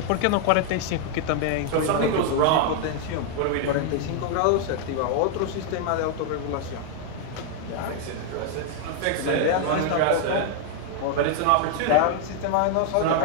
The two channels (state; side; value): different; both; correlation 0.00